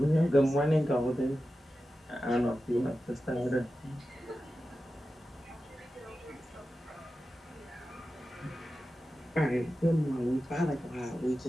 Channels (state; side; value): normal; both; correlation 0.93